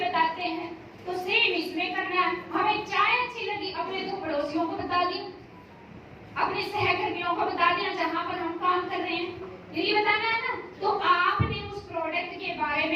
हैं, तो सेम इसमें करना है। हमें चाय अच्छी लगी, अपने 2 पड़ोसियों को बता दिया, अपने सहकर्मियों को बता दिया जहां पर हम काम कर रहे हैं, यही बताना है ना? तो आपने उस प्रोडक्ट के बारे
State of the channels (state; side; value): identical; both; correlation 1.00